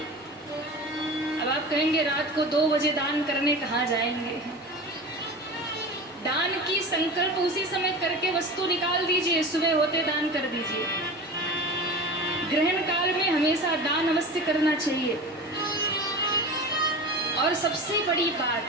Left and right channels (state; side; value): normal; both; correlation 0.32